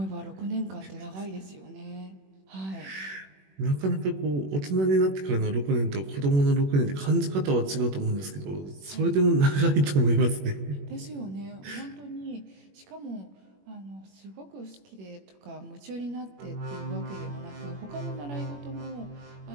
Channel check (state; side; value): late; left; 21 ms